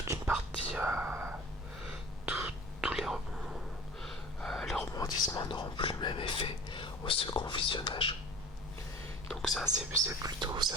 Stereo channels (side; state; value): both; normal; correlation 0.41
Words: une partie, tous les rebondissements n'auront plus le même effet au second visionnage. Donc ça c'est plutôt, ça